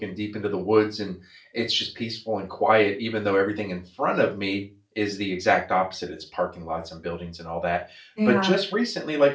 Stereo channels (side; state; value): both; identical; correlation 1.00